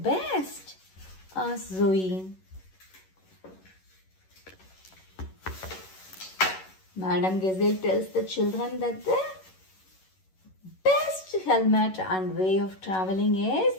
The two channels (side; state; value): right; late; 11 ms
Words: Asked Zoe. Madame Gazelle tells the children that the best helmet and way of traveling is